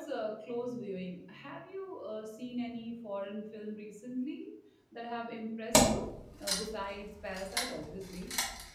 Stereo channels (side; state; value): both; identical; correlation 1.00